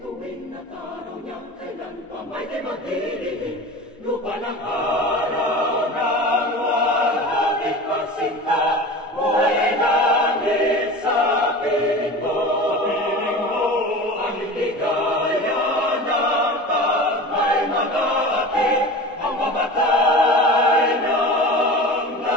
at araw niyang kailan pa may di magdidingin. Lupa ng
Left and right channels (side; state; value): both; normal; correlation 0.34